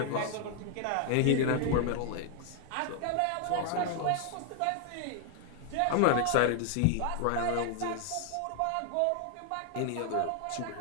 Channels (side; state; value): both; different; correlation 0.00